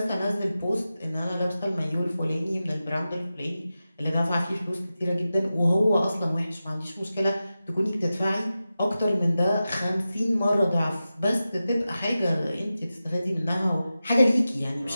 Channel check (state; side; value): inverted; both; correlation -0.93